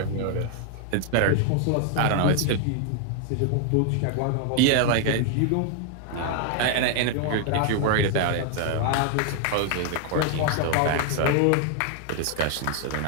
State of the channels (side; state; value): both; different; correlation 0.00